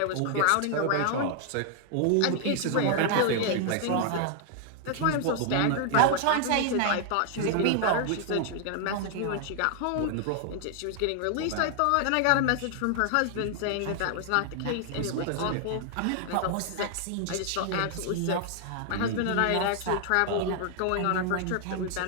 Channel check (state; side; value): different; both; correlation 0.00